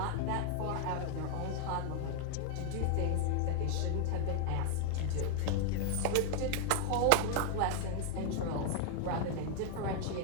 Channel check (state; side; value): different; both; correlation 0.00